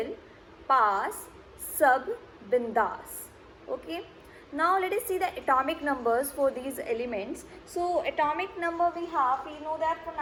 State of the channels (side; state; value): both; identical; correlation 1.00